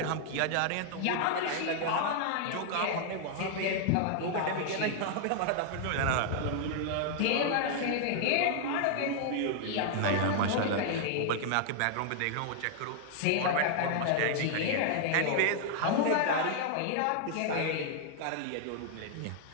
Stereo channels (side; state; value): both; different; correlation 0.00